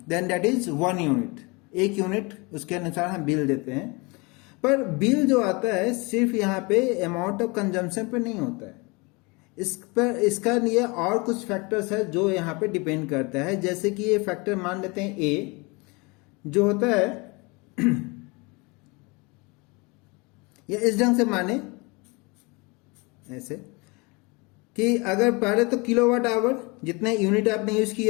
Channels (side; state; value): right; quieter; 27.7 dB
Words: then that is 1 unit, 1 unit उसके अनुसार हम bill देते हैं। पर bill जो आता है सिर्फ यहाँ पे अमाउंट ऑफ कंजम्पशन पे नहीं होता है, इस पर इसका लिए और कुछ फैक्टर्स है जो यहाँ पे डिपेंड करता है। जैसे कि ये फैक्टर मान लेते हैं ए जो होता है या इस ढंग से माने ऐसे कि अगर पहले तो किलोवाट आवर जितने यूनिट आपने यूज